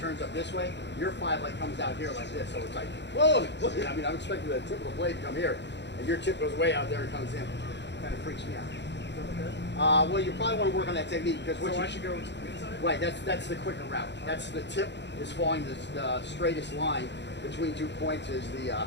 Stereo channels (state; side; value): late; right; 0.51 ms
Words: up this way. Your 5 like comes out here like this, so it's like, whoa! I mean, I'm expecting the tip of the blade to come here, and your tip goes way out there and comes in. Kind of freaks me out. Well, you probably want to work on that technique because what I should go inside? right, that's the quicker route. That's the tip is following the straightest line between 2 points is the